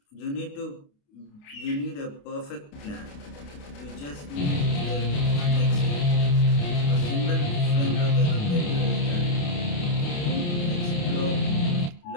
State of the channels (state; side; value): late; right; 28 ms